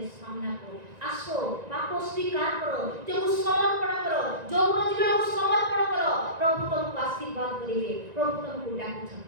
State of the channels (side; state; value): left; late; 1.9 ms